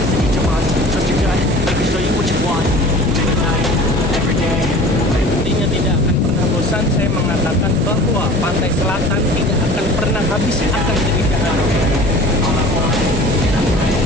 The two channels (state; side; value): normal; both; correlation 0.42